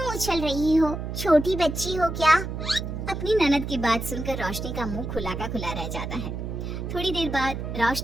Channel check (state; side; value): noise; right; hum, 5 dB below the sound